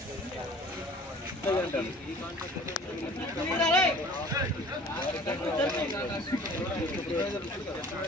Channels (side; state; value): both; normal; correlation 0.48